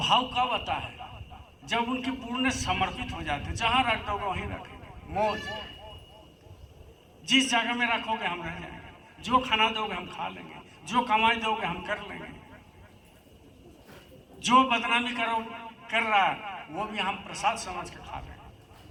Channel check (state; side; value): identical; both; correlation 1.00